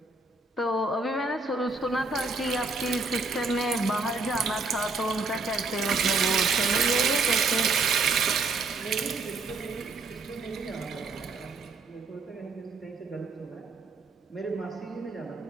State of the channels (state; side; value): quieter; left; 3.8 dB